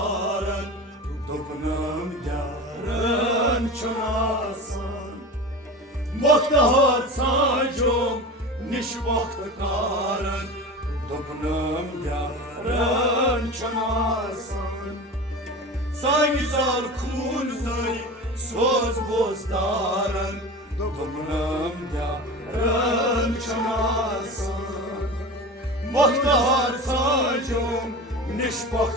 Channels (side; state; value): both; normal; correlation 0.31